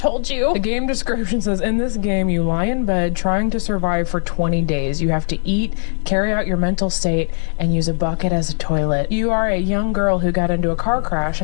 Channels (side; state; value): right; silent; 67 dB below the other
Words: you. The game description says, in this game, you lie in bed trying to survive for 20 days. You have to eat, carry out your mental state, and use a bucket as a toilet. You are a young girl who got into a car crash,